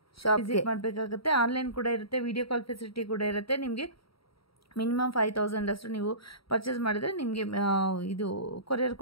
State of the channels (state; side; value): late; right; 0.75 ms